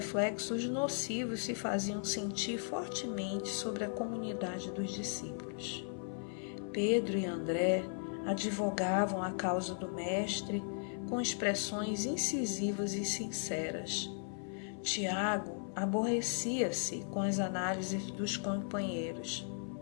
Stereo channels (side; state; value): right; silent; 53 dB below the other